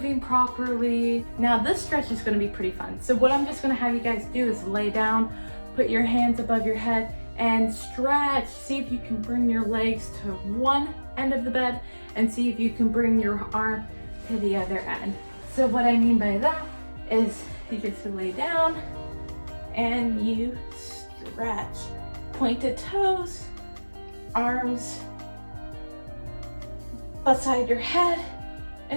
properly. Now this stretch is going to be pretty fun. So what I'm just going to have you guys do is lay down, put your hands above your head and stretch. See if you can bring your legs to one end of the bed and see if you can bring your arm to the other end. So what I mean by that is you just lay down and you stretch. Pointed toes, arms beside your head,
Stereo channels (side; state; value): both; inverted; correlation -1.00